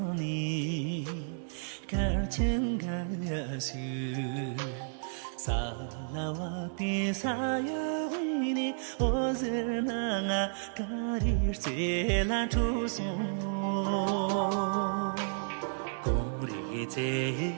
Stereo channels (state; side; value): silent; left; 56 dB below the other